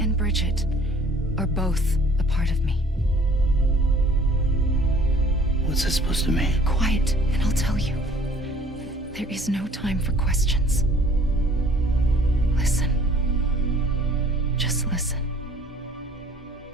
Bridget are both a part of me. What's that supposed to mean? Quiet, and I'll tell you. There is no time for questions. Listen. Just listen.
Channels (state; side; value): normal; both; correlation 0.54